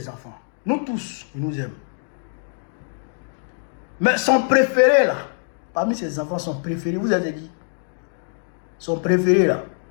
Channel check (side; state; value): right; silent; digital silence